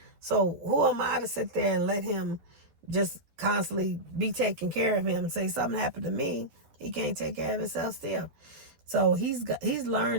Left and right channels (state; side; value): late; left; 11 ms